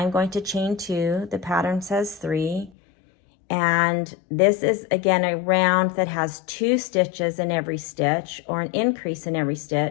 going to chain 2. The pattern says 3. And this is, again, a round that has 2 stitches in every stitch, or an increase in every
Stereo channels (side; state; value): right; drops out; at 2.7 s